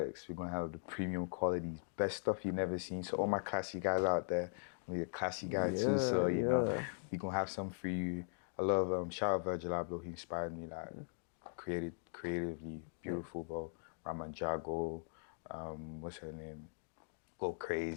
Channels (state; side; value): silent; right; digital silence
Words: We're gonna have the premium qualities, best stuff you've never seen. So all my classy guys out there, I'm a classy guy too. So you know, we gonna have some for you. I love shout out Virgil Abloh. He inspired me, like creatively beautiful, bro. Raman Jago, what's her name? Go